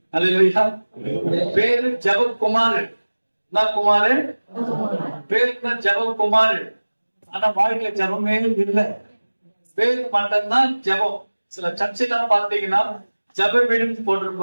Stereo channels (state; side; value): inverted; both; correlation -1.00